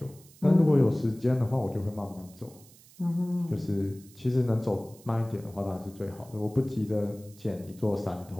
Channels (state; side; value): noise; right; hiss, 24 dB below the sound